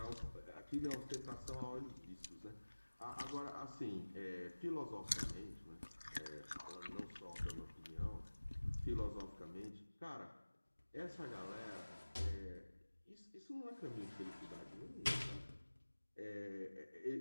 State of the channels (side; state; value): both; inverted; correlation -1.00